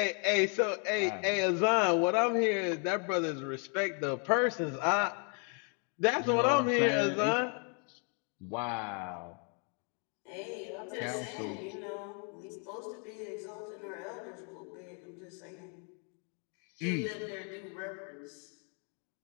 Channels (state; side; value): quieter; right; 39.5 dB